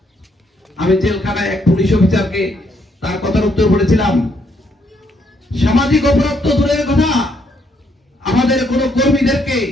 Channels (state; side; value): normal; both; correlation 0.72